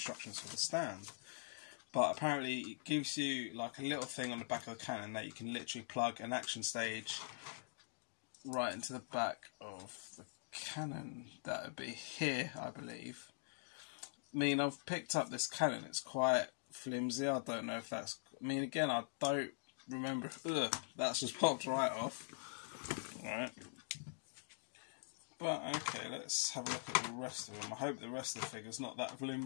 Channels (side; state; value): right; silent; digital silence